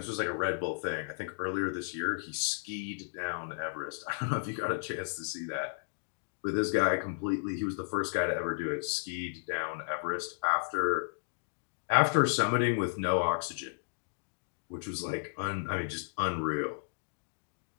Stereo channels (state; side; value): silent; right; digital silence